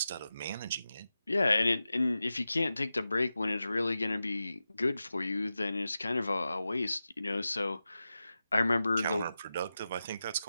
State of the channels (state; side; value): inverted; both; correlation -0.92